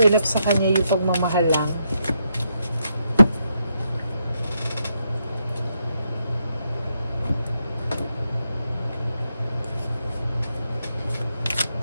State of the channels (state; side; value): inverted; both; correlation -0.80